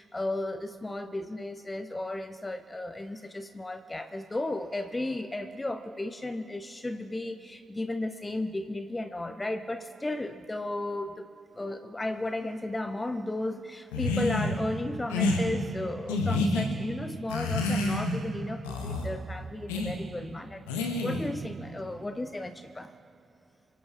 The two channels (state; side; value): normal; both; correlation 0.79